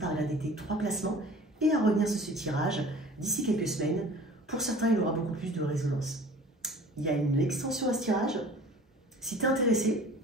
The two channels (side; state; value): both; normal; correlation 0.45